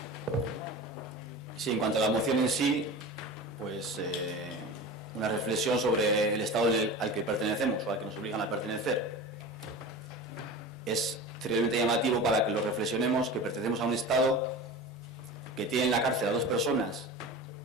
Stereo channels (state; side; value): normal; both; correlation 0.32